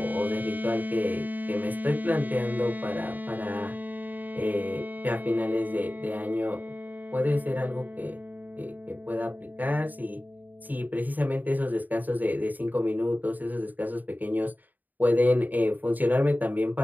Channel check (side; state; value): left; late; 0.085 ms